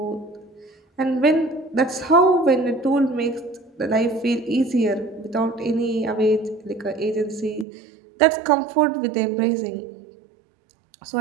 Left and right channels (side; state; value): left; drops out; at 7.7 s